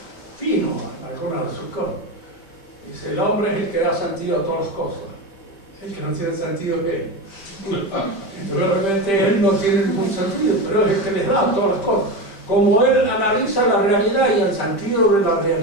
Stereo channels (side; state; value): right; late; 5.1 ms